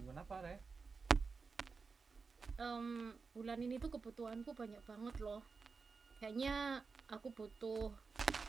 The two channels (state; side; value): quieter; left; 4.7 dB